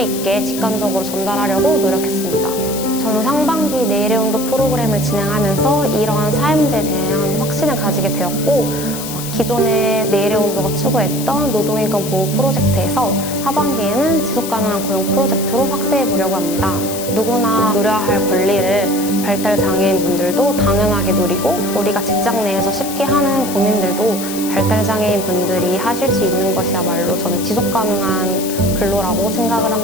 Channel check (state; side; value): noise; left; hiss, 9 dB below the sound